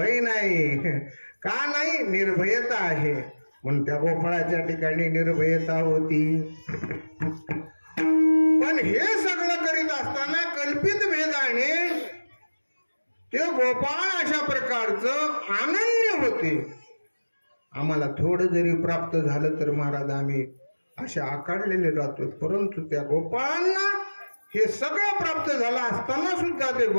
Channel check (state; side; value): inverted; both; correlation -1.00